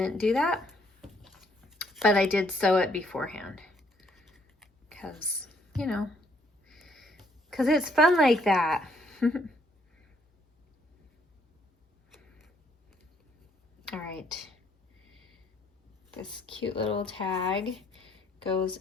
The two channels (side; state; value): both; normal; correlation 0.67